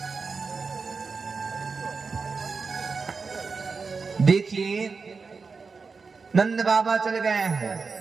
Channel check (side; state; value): left; quieter; 4.8 dB